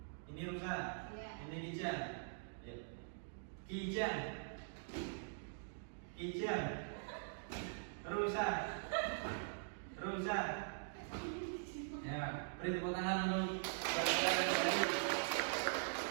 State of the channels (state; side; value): silent; left; digital silence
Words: Ini rusa. Iya. Ini Kijang. Ya. Kijang. Rusa. Ya, beri tepuk tangan untuk